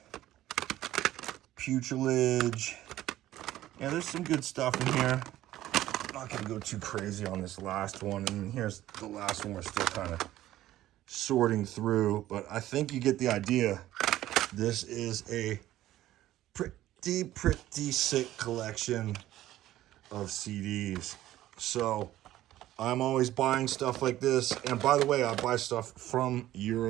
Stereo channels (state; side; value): quieter; left; 14.2 dB